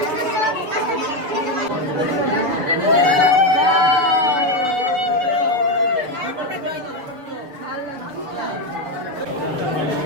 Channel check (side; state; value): left; late; 6.8 ms